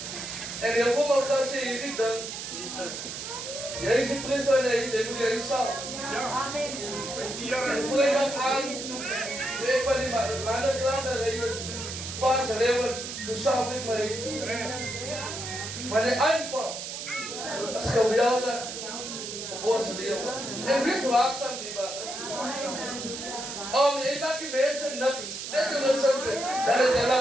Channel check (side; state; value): right; noise; hiss, 7 dB below the sound